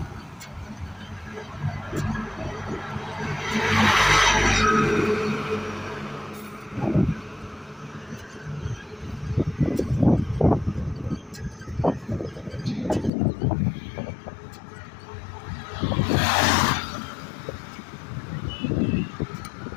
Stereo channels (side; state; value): right; drops out; at 13.1 s